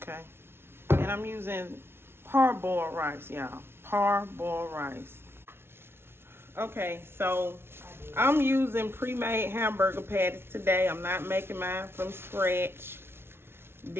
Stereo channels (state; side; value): late; left; 0.12 ms